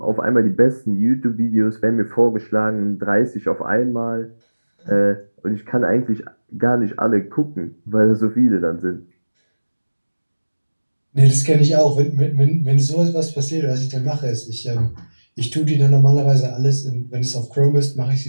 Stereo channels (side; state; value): both; inverted; correlation -1.00